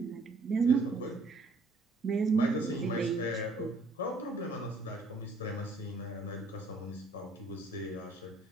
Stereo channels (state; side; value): quieter; left; 3.1 dB